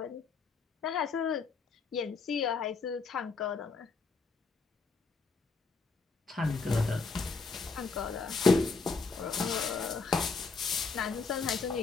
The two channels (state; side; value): quieter; right; 4.4 dB